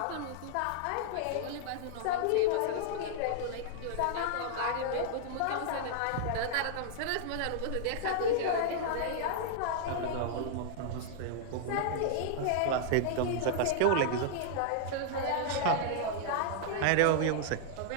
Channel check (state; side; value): different; both; correlation -0.01